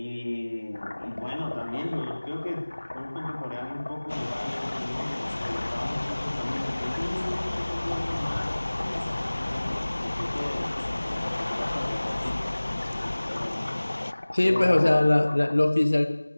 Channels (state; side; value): inverted; both; correlation -1.00